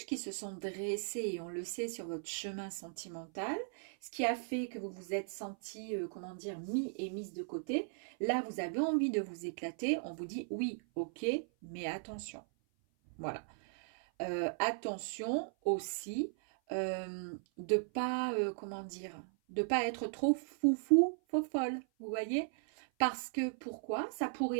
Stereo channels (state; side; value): silent; left; 53 dB below the other